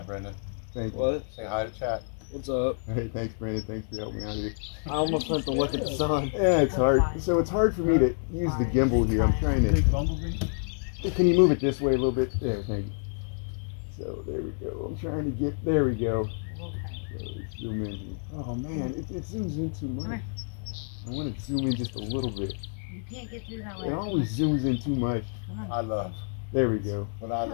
Brendan. Thank you. What? Say hi to chat. What's up? Hey, thanks, Brandon. Thanks for helping me out here. I almost went to look at the sun. Yeah, it's hard. So it's hard for me to use the gimbal here. I'm trying to. Big bumblebee. Can you move it this way a little bit? There, thank you. So there we go. I'm trying to get. There we go. So let's zoom in here. Oh man, it zooms in too much. I want to zoom in just a little bit. You can't get through that way. It always zooms in too much. I love. There we go. What I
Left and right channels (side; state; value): right; silent; digital silence